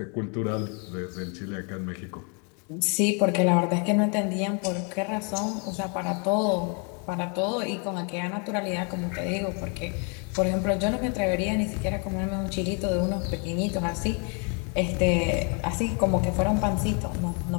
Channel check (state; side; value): quieter; right; 36.9 dB